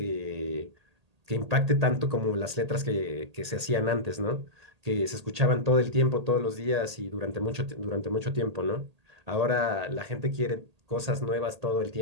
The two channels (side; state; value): left; late; 1.8 ms